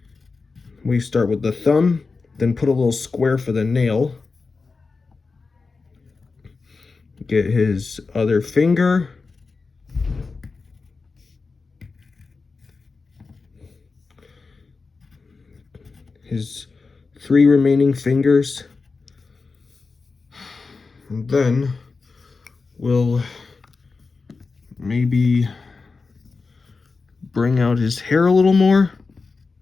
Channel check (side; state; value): right; quieter; 4.3 dB